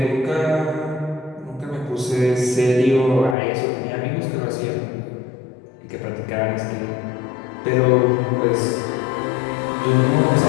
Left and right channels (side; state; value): right; drops out; at 3.4 s